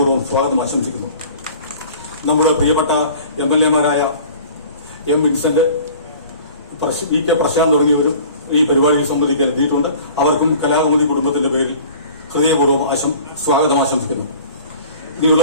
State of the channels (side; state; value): both; inverted; correlation -0.45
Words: സ്വാഗതം ആശംസിക്കുന്നു. നമ്മുടെ പ്രിയപ്പെട്ട MLA മാരായ M. വിൻസെന്റ്, VK പ്രശാന്ത് തുടങ്ങിയവരും ഈ പരിപാടിയിൽ സംബന്ധിക്കാൻ എത്തിയിട്ടുണ്ട്. അവർക്കും കലാകൗമുദി കുടുംബത്തിന്റെ പേരിൽ ഹൃദയപൂർവ്വം സ്വാഗതം ആശംസിക്കുന്നു.